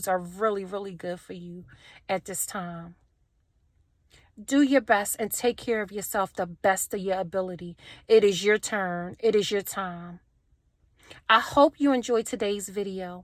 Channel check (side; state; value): both; identical; correlation 1.00